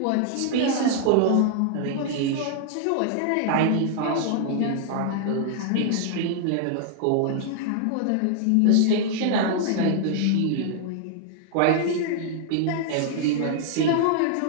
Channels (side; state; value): both; different; correlation 0.00